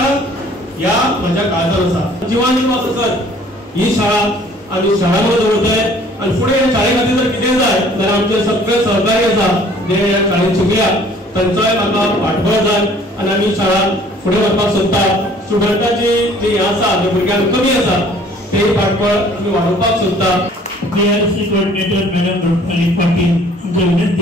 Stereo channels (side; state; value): both; normal; correlation 0.55